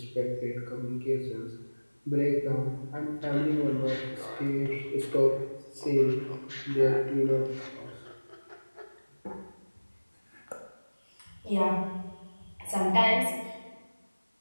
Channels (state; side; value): inverted; both; correlation -1.00